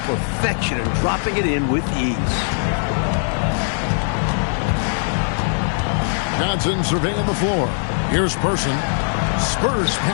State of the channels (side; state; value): right; silent; 59 dB below the other